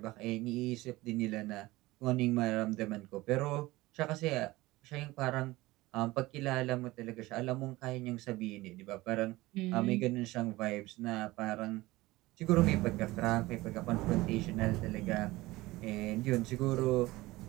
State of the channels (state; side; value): quieter; left; 19.5 dB